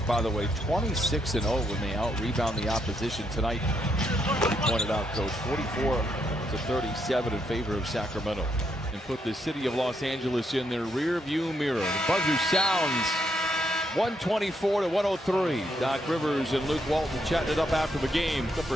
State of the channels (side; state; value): both; normal; correlation 0.77